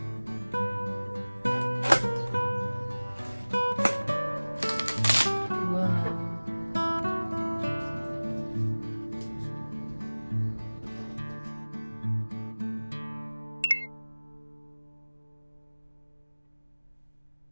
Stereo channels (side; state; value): both; inverted; correlation -1.00